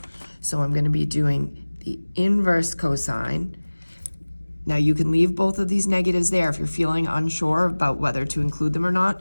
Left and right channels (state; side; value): inverted; both; correlation -1.00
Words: So I'm going to be doing the inverse cosine. Now you can leave both of these negatives there if you're feeling unsure about whether to include them or not.